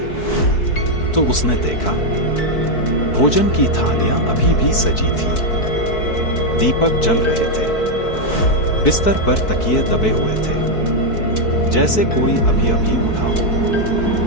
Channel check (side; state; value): right; late; 4.6 ms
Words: तो उसने देखा भोजन की थालियां अभी भी सजी थी, दीपक जल रहे थे, बिस्तर पर तकिए दबे हुए थे जैसे कोई अभी अभी उठा हो।